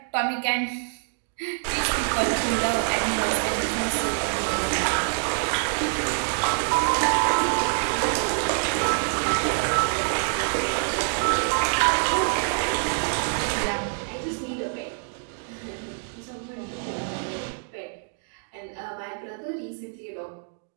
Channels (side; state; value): left; silent; digital silence